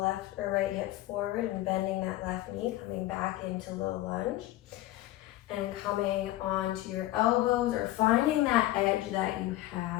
or right hip forward and bending that left knee, coming back into low lunge. And coming onto your elbows or finding that edge that you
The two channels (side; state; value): right; quieter; 16.0 dB